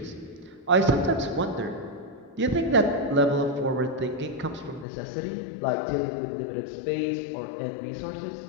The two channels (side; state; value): right; drops out; at 4.9 s